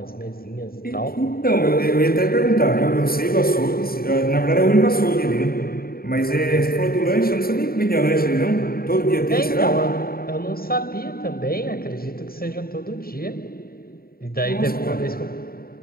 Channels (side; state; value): right; late; 0.43 ms